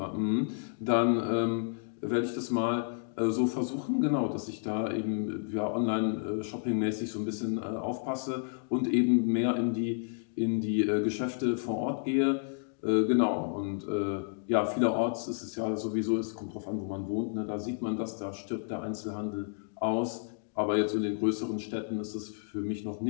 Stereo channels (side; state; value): right; silent; digital silence